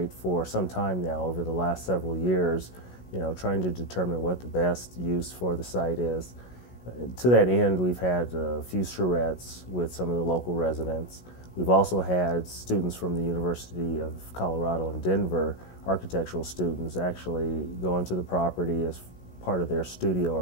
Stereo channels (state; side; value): late; right; 16 ms